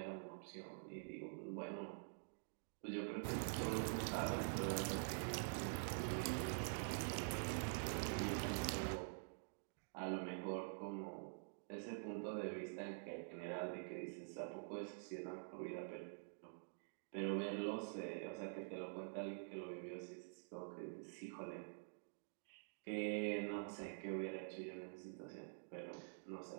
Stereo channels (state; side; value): silent; left; digital silence